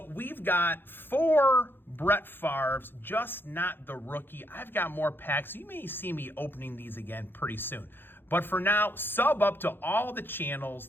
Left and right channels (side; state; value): right; late; 0.10 ms